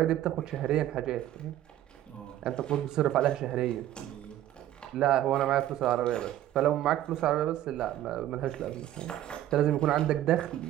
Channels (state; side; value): quieter; left; 13.0 dB